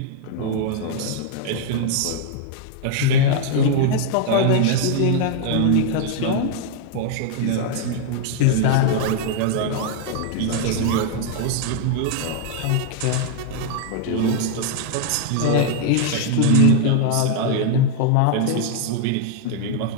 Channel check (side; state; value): both; different; correlation 0.00